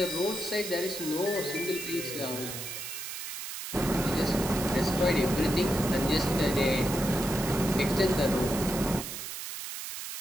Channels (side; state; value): right; noise; hiss, 7 dB below the sound